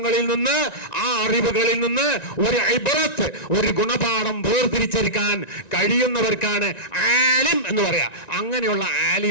നിന്ന്, ആ അറിവുകളിൽ നിന്ന് ഒരു ഇബ്രത്ത്, ഒരു ഗുണപാഠം വേർതിരിച്ചെടുക്കാൻ കഴിയുന്നവർക്കാണ് ആലിം എന്ന് പറയാ. അങ്ങനെയുള്ള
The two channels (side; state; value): right; late; 1.9 ms